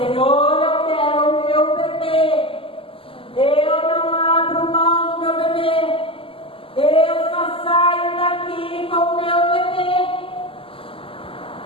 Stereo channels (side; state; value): right; late; 0.26 ms